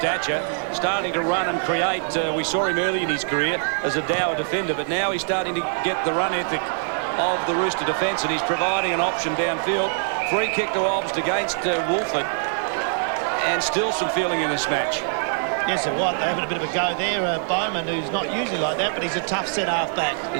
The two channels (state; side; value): silent; left; 63 dB below the other